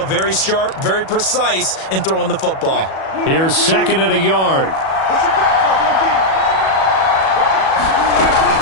Very sharp, very precise in throwing the football. Here's 2nd and a yard.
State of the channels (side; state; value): right; late; 37 ms